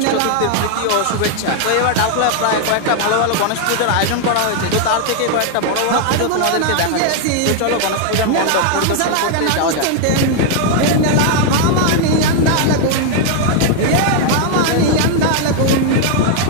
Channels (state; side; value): different; both; correlation 0.00